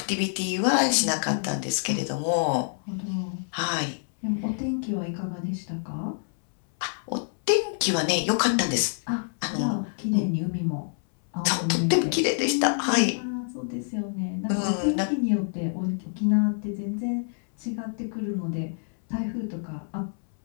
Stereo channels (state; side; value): silent; right; 60 dB below the other